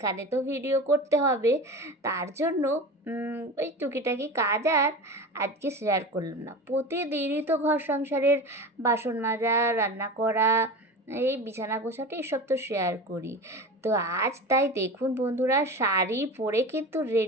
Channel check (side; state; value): both; normal; correlation 0.30